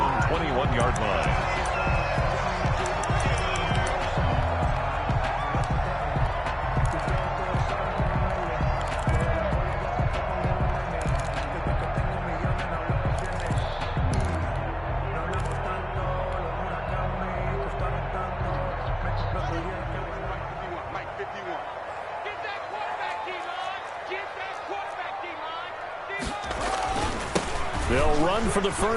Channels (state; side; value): identical; both; correlation 1.00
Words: 21-yard line. They'll run for the